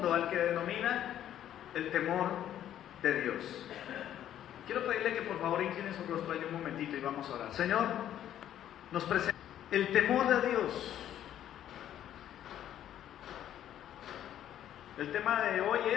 al que denomina el temor de Dios. Quiero pedirle que por favor incline su rostro ahí un momentito y vamos a orar. Señor, nos presenta el temor de Dios. El tema de hoy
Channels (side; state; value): right; quieter; 11.1 dB